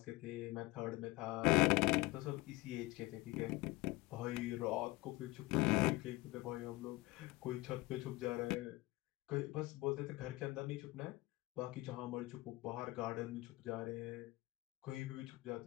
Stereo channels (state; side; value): quieter; right; 20.9 dB